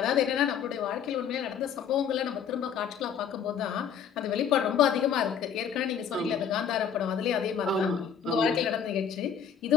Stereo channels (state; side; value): quieter; right; 7.7 dB